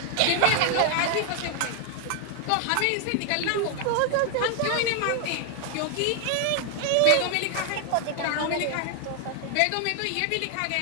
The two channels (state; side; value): different; both; correlation 0.00